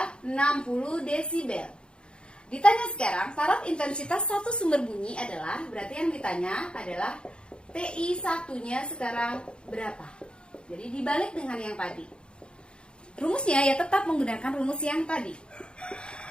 60 desibel. Ditanya sekarang, taraf intensitas satu sumber bunyi adalah, berarti yang ditanya adalah TI 1-nya sekarang berapa? Jadi dibalik dengan yang tadi. Rumusnya ya tetap menggunakan rumus yang tadi.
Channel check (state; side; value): late; right; 0.053 ms